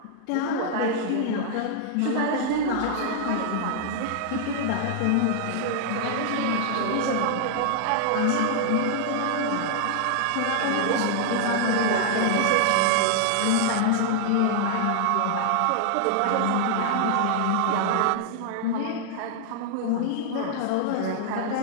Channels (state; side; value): different; both; correlation -0.01